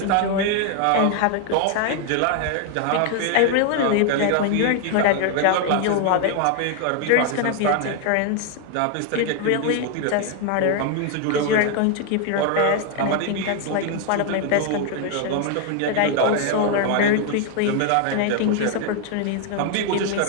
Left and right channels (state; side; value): different; both; correlation 0.01